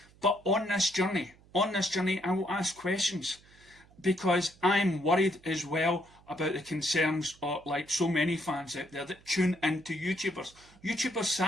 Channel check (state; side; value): noise; right; hum, 27 dB below the sound